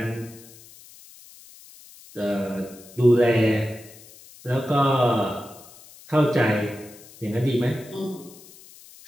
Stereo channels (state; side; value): noise; left; hiss, 21 dB below the sound